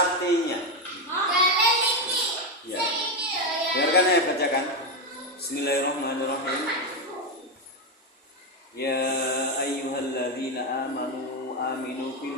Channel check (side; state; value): both; normal; correlation 0.09